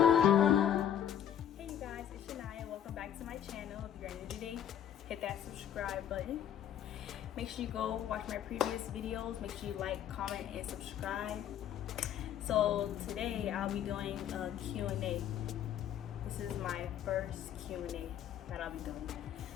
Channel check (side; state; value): right; quieter; 10.1 dB